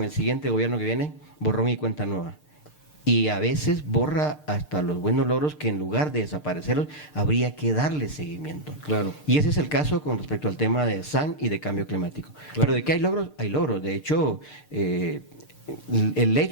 el siguiente gobierno que viene? Borrón y cuenta nueva. Y a veces borra hasta los buenos logros que en lugar de desaparecerlos habría que darle seguimiento. Claro. Y ese es el caso con respecto al tema de SAN y de cambio climático. Claro. Pero de que hay logros, hay logros. De hecho, el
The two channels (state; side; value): late; right; 6.6 ms